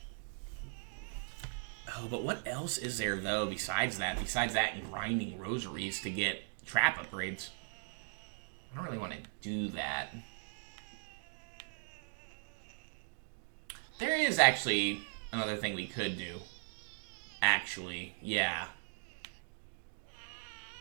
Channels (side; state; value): left; silent; digital silence